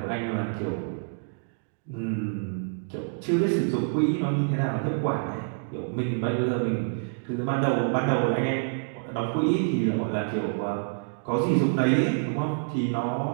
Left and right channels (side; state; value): left; silent; digital silence